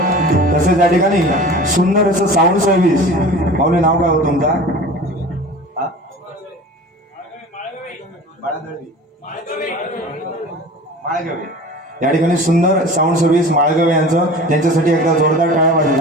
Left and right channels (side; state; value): both; normal; correlation 0.39